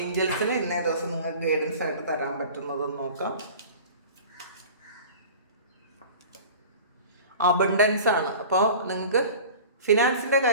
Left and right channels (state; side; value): inverted; both; correlation -0.40